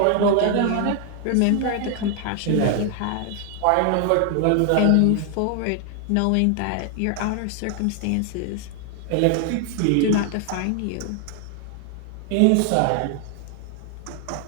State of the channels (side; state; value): both; different; correlation 0.00